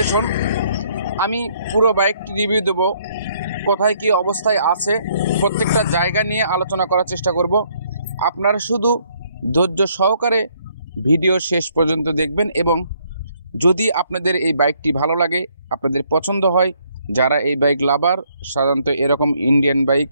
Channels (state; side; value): inverted; both; correlation -0.68